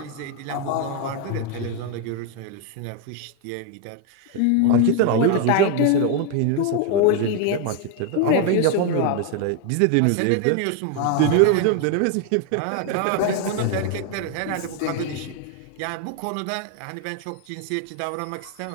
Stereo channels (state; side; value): different; both; correlation 0.01